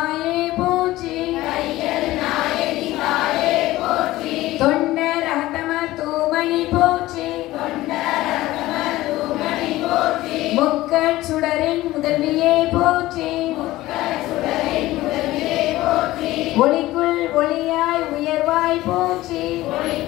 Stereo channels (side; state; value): right; quieter; 17.0 dB